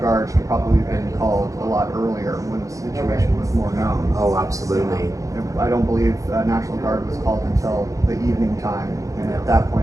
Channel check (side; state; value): left; late; 0.16 ms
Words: should probably have been called a lot earlier when the situation was more known. Oh, absolutely. I don't believe National Guard was called until the evening time, and at that